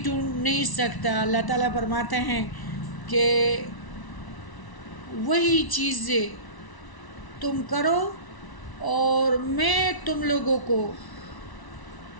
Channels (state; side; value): late; right; 1.0 ms